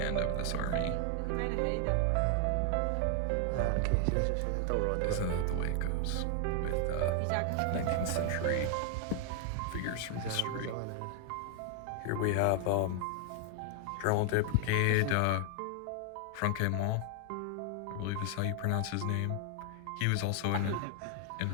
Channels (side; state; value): both; different; correlation 0.00